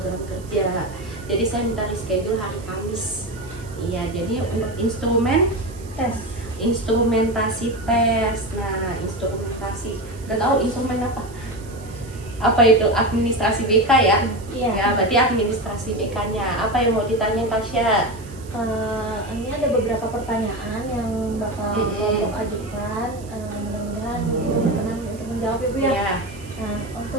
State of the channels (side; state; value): right; noise; hiss, 22 dB below the sound